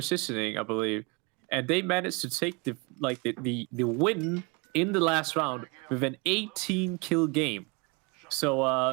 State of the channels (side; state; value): left; quieter; 30.2 dB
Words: I believe. And they managed to take the win in the last round with an 18 kill game.